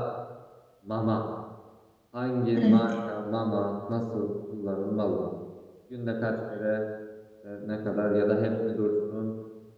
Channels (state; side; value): identical; both; correlation 1.00